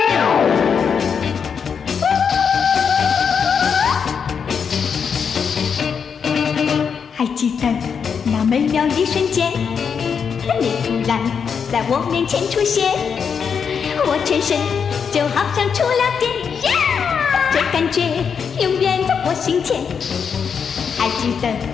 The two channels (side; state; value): right; quieter; 6.6 dB